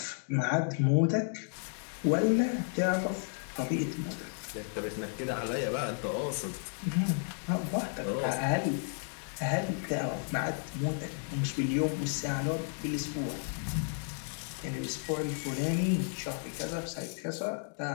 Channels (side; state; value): right; silent; 56 dB below the other